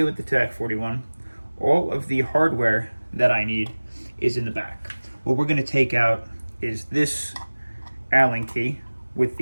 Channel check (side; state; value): both; inverted; correlation -1.00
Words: with the TAC41, all of the hardware that I need is in the back. What we're going to take out is this Allen key with